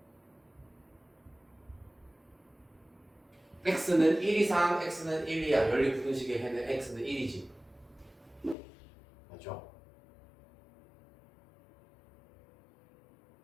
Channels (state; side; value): drops out; right; at 8.6 s